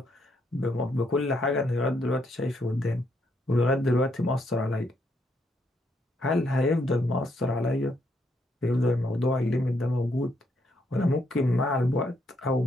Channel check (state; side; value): normal; both; correlation 0.75